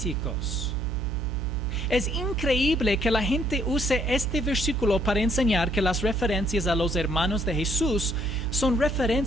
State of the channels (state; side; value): noise; right; hum, 2 dB below the sound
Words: Es increíble que la gente use este versículo para enseñar que las referencias a los hermanos de Jesús son